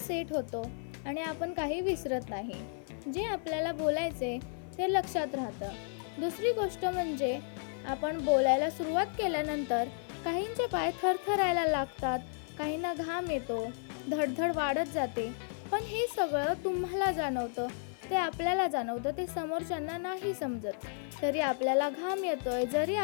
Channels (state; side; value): silent; right; 56 dB below the other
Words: होतो आणि आपण काही विसरत नाही. जे आपल्याला बोलायचे ते लक्षात राहतं. दुसरी गोष्ट म्हणजे आपण बोलायला सुरुवात केल्यानंतर काहींचे पाय थरथरायला लागतात, काहींना घाम येतो, धडधड वाढत जाते. पण हे सगळं तुम्हाला जाणवतं, ते आपल्याला जाणवतं, ते समोरच्यांना नाही समजत. तरी आपल्याला घाम येतोय, जरी